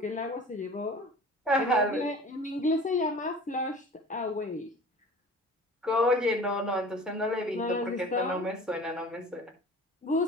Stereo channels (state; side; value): normal; both; correlation 0.42